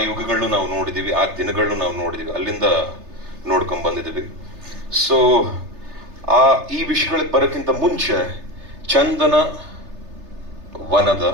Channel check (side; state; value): left; late; 3.3 ms